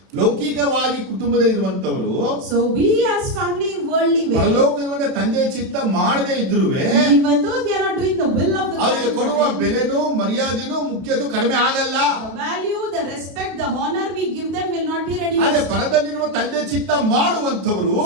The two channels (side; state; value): left; late; 32 ms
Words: ಲೌಕಿಕವಾಗಿ ಕುಟುಂಬದಲ್ಲಿರುವಂತವರು, So we as family in worldly way, ಪರಲೋಕದ ತಂದೆಯ ಚಿತ್ತ ಮಾಡದೇ ಇದ್ರುವೆ even though they are not doing the will of the God, ಅವರಿಗೆ ಕೊಡುವ ಬೆಲೆನೂ ಮರ್ಯಾದೆನೂ ಮುಖ್ಯದು ಕಡಿಮೆ ಆಗಲ್ಲ. the value, the respect, the honor we give them will not be ಆದ್ರೆ reduced. ಪರದಲ್ಲಿರುವ ತಂದೆ ಚಿತ್ತ ಮಾಡುವಂತವರು,